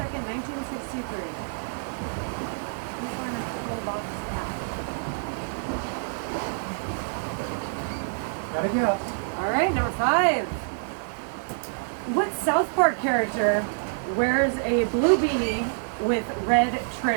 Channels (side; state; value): left; silent; digital silence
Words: 1963. Who's wearing a pillbox hat? Gotta guess. All right, number 5. What South Park character wears a blue beanie with red